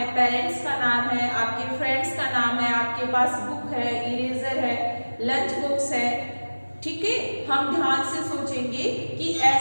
पेरेंट्स का नाम है, आपके फ्रेंड्स का नाम है, आपके पास बुक है, इरेजर है, लंच बॉक्स है, ठीक है। हम ध्यान से सोचेंगे कि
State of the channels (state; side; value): inverted; both; correlation -1.00